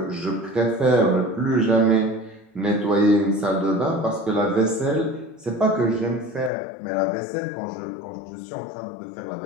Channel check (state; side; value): drops out; right; at 6.5 s